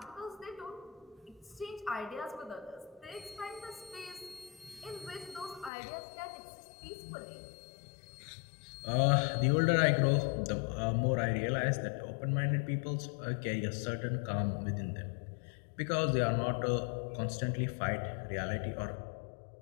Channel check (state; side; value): drops out; right; at 5.7 s